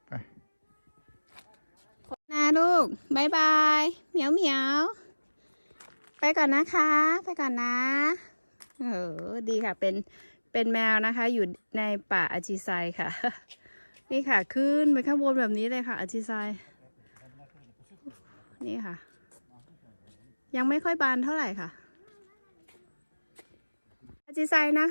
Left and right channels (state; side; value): inverted; both; correlation -1.00